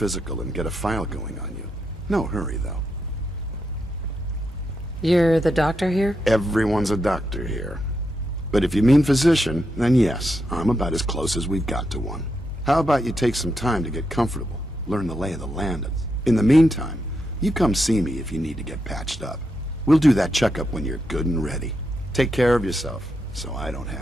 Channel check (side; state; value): both; normal; correlation 0.84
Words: and get a file going on you. No hurry, though. You're the doctor here? Everyone's a doctor here. But if you mean physician, then yes, I'm about as close as we've got to one. How about you take some time to get comfortable, learn the lay of the land. In the meantime, you come see me if you need to get patched up. We'll do that checkup when you're good and ready. Take care of yourself, so I don't